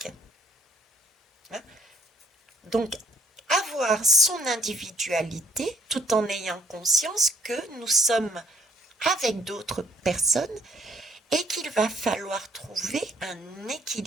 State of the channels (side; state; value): both; normal; correlation 0.63